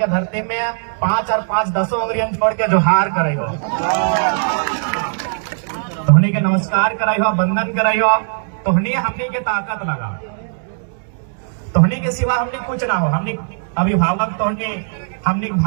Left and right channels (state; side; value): silent; left; 67 dB below the other